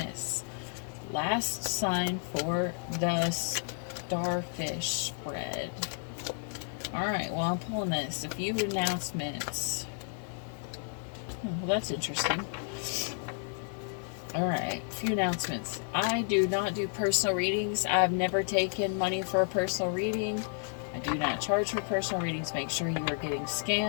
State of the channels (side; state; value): right; silent; 57 dB below the other